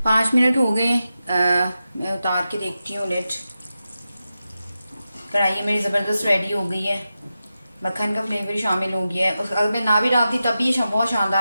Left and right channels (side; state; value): both; inverted; correlation -0.91